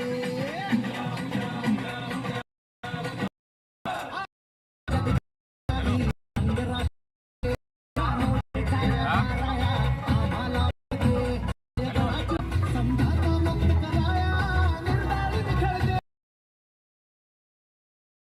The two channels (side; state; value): both; identical; correlation 1.00